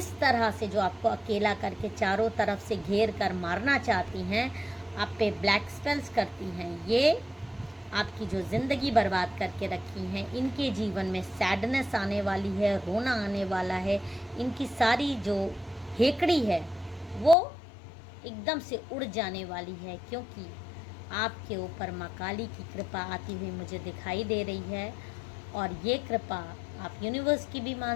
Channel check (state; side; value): drops out; right; at 17.4 s